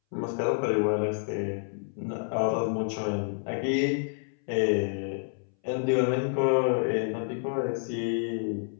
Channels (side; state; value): right; silent; 59 dB below the other